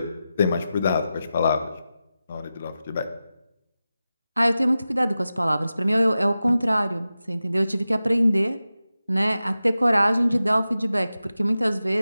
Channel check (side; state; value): both; inverted; correlation -0.93